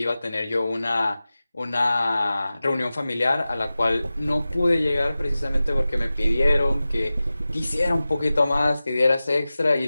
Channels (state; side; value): inverted; both; correlation -0.96